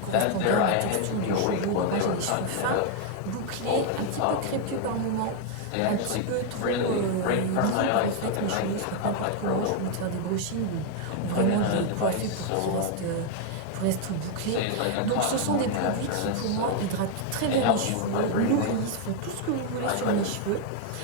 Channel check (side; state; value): both; different; correlation 0.00